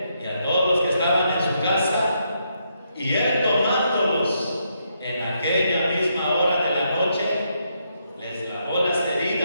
y a todos los que estaban en su casa, y él tomándolos en aquella misma hora de la noche, les lavó las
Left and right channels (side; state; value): both; inverted; correlation -0.78